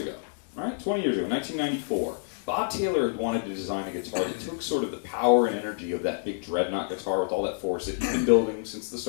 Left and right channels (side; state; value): right; silent; digital silence